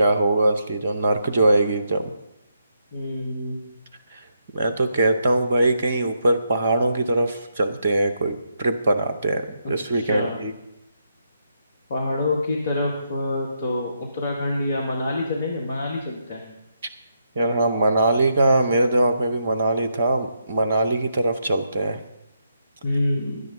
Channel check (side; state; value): both; inverted; correlation -0.80